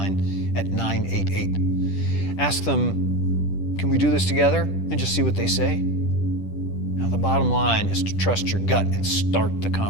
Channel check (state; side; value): late; right; 10 ms